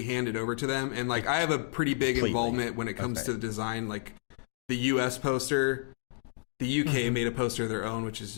hand it over to them, and like I have a pretty big involvement when it comes to the design. Like the US poster, the UK made a poster of their own, which is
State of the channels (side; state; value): right; silent; digital silence